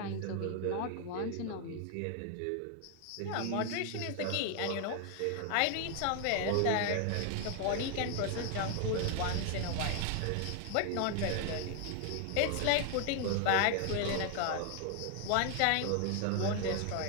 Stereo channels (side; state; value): both; different; correlation 0.00